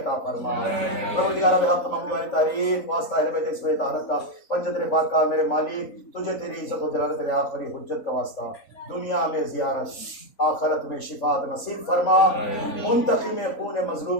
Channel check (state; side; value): late; right; 3.5 ms